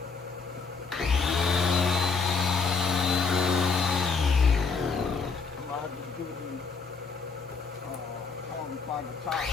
by the top.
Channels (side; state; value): right; quieter; 5.0 dB